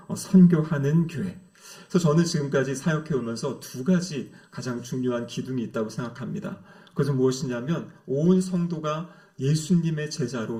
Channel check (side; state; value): both; identical; correlation 1.00